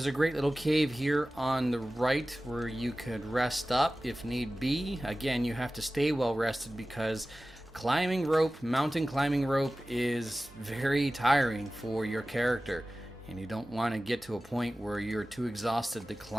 a great little cave here on the right where you could rest up if need be. Again, you have to stay well rested because climbing rope, mountain climbing rope, is very tiring for your character. And you don't want to get to a point where you're too exhausted to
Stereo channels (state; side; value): normal; both; correlation 0.96